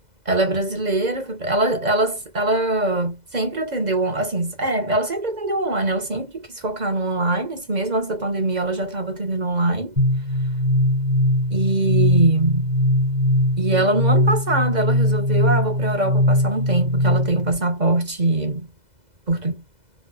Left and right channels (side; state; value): left; late; 2.0 ms